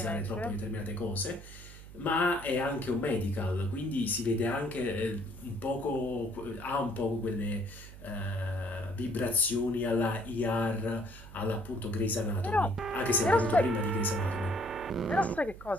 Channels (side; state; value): right; noise; hum, 16 dB below the sound